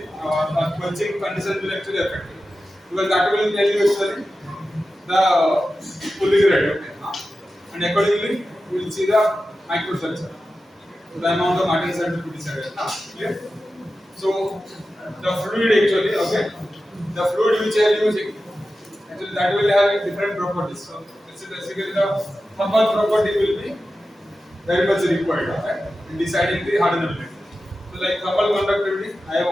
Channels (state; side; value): normal; both; correlation 0.93